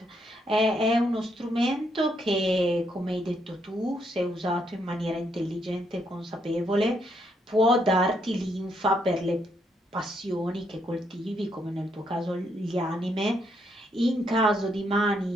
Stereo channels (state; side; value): normal; both; correlation 0.75